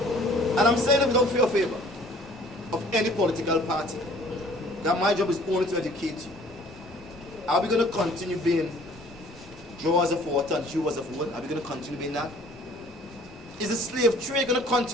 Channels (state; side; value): normal; both; correlation 0.53